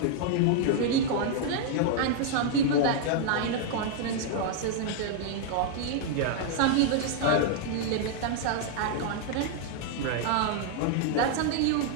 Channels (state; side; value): different; both; correlation -0.01